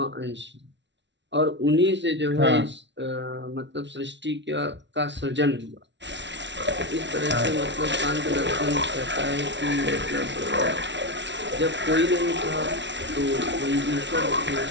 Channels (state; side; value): late; left; 0.52 ms